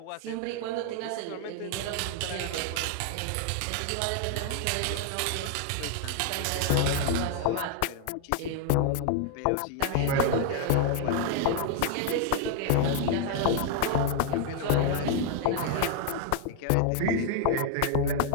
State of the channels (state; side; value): different; both; correlation 0.00